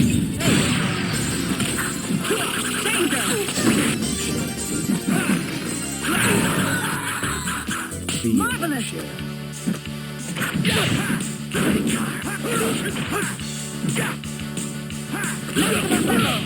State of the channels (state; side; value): identical; both; correlation 1.00